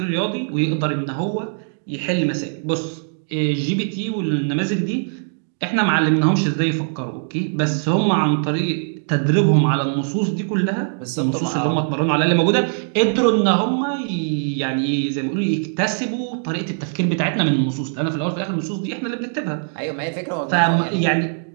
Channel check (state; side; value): silent; left; digital silence